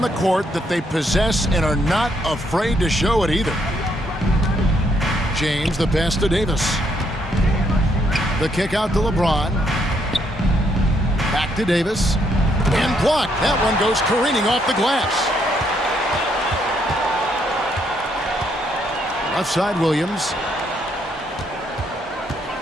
the court that they possess and are not afraid to show it either. James, the pass to Davis. The kick out to LeBron. Back to Davis. And blocked. That one goes careening off the glass. Left side, Williams.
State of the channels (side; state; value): both; normal; correlation 0.73